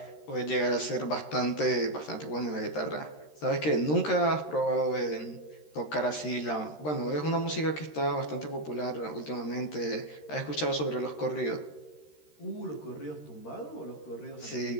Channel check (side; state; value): right; late; 13 ms